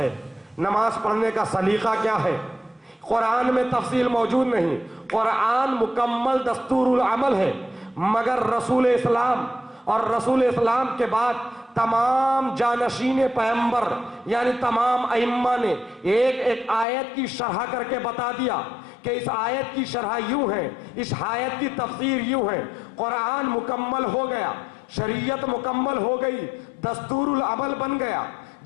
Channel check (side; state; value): right; drops out; at 16.9 s